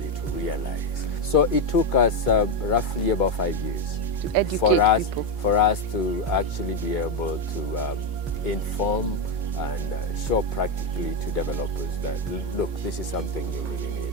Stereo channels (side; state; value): both; normal; correlation 0.07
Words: to realize. So it took us roughly about 5 years to educate people. For us to actually be able to inform and show practically to developers that, look, this is something you really